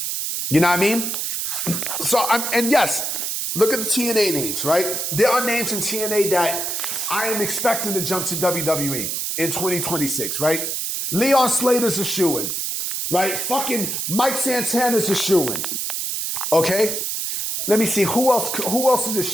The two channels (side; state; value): right; noise; hiss, 2 dB below the sound